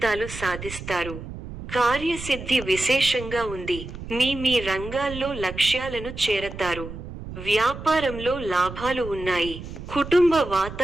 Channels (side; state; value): right; noise; rumble, 11 dB below the sound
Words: సాధిస్తారు. కార్యసిద్ధి విశేషంగా ఉంది. మీ రంగాల్లో లక్ష్యాలను చేరతారు. వ్యాపారంలో లాభాలు ఉన్నాయి. కుటుంబ